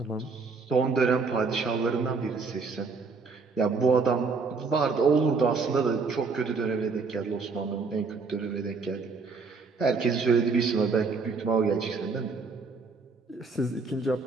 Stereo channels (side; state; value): left; quieter; 4.5 dB